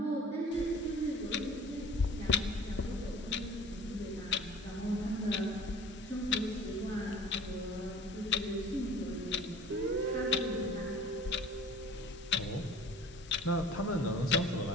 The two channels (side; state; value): both; normal; correlation 0.47